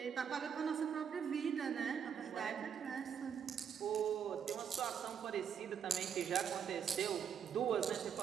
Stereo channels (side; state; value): left; quieter; 7.7 dB